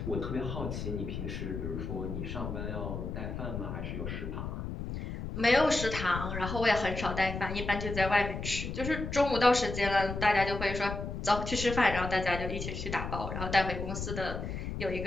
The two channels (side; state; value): left; noise; rumble, 5 dB below the sound